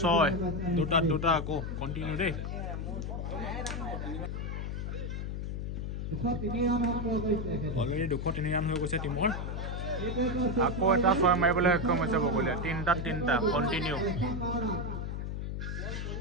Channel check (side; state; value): left; noise; hum, 4 dB below the sound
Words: 6 দুটা আকৌ কণ্টিনিউ দেই অলৰেডি 203 ৰান হৈ গৈছে টিমৰ আকৌ এটা 6 মাৰিবলৈ সক্ষম হৈছে বগলীয়া 3টা কণ্টিনিউ